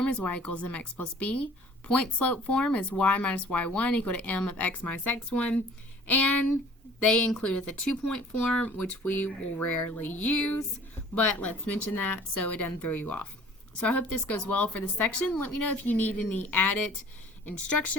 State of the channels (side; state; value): both; normal; correlation 0.50